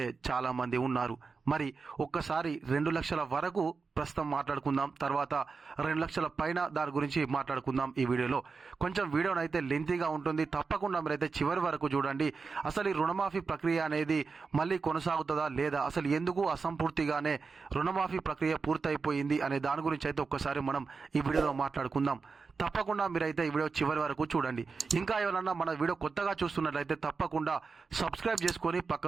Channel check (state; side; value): quieter; left; 4.7 dB